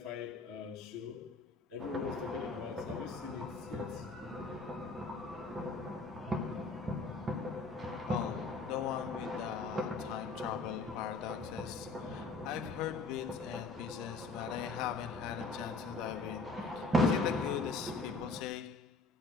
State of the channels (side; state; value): right; quieter; 3.5 dB